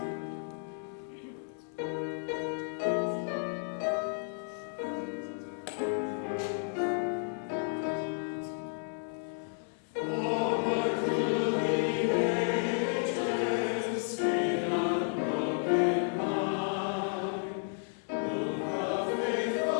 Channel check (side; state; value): right; silent; 56 dB below the other